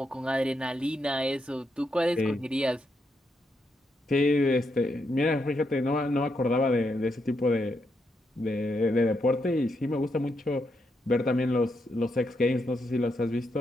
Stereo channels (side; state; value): both; normal; correlation 0.81